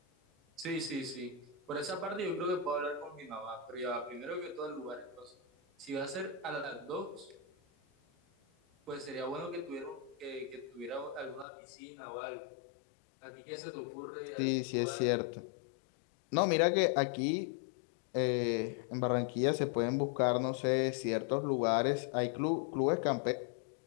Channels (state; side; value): drops out; right; at 11.5 s